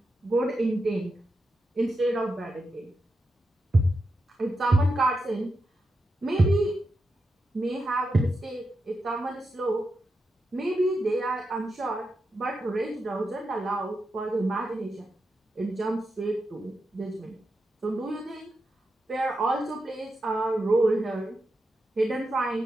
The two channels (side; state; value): both; normal; correlation 0.88